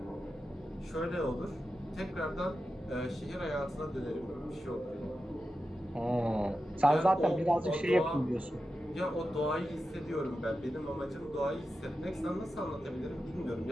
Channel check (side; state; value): both; normal; correlation 0.91